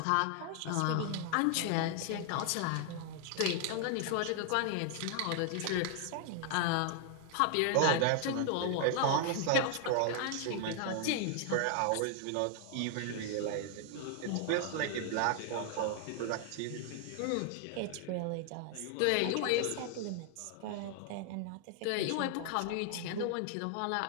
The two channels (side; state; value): both; different; correlation 0.00